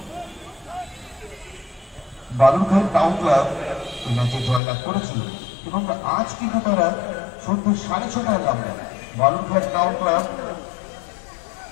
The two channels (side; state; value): right; drops out; at 4.6 s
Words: বালুরঘাট টাউন ক্লাব এই ম্যাচে জয়লাভ করেছিল এবং আজ কিন্তু তারা সন্ধ্যে 6:30টায় নামবে বালুরঘাট টাউন ক্লাব